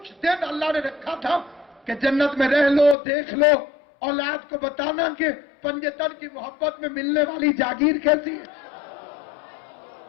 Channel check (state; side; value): drops out; right; at 3.0 s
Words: دن اللہ نے رکھا تھا کہ جنت میں رہ لو، دیکھ لو، اولاد کو بتانا کہ پنجتن کی محبت میں ملنے والی جاگیر کیسی ہے۔